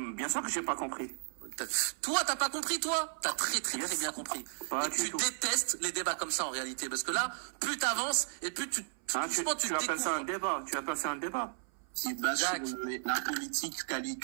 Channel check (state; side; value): silent; left; 55 dB below the other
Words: Bien sûr que j'ai pas compris. Toi, t'as pas compris, toi? T'as très bien compris. Et tu détestes les débats comme ça, en réalité. Parce que là, plus t'avances, et plus tu appelles ça un débat. Tu appelles ça un débat. Qui est basé sur la politique,